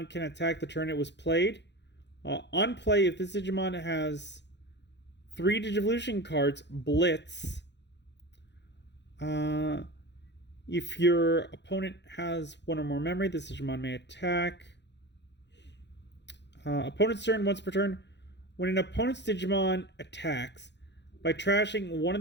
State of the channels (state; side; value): late; right; 0.51 ms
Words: can attack the turn it was played. On play, if this Digimon has 3 Digivolution cards, Blitz. If your opponent has 1 or more memory, this Digimon may attack. Opponent's turn once per turn. When an opponent's Digimon attacks, by trashing one of